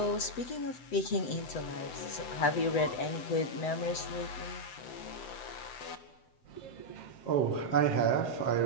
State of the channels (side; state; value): right; late; 7.9 ms